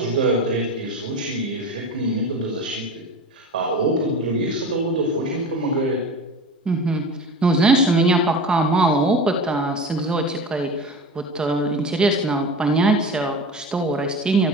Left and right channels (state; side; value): normal; both; correlation 0.32